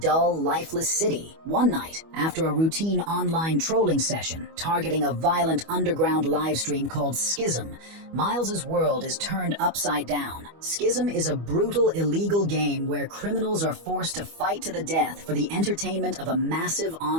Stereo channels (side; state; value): left; late; 25 ms